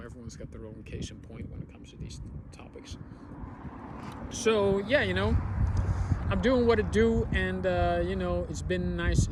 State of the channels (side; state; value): both; identical; correlation 1.00